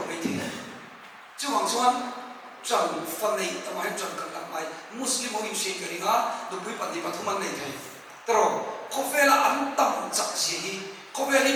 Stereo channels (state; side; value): identical; both; correlation 1.00